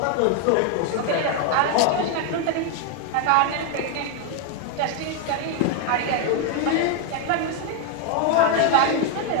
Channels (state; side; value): different; both; correlation 0.01